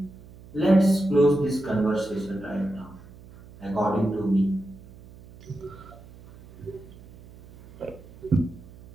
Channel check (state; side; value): noise; right; hum, 20 dB below the sound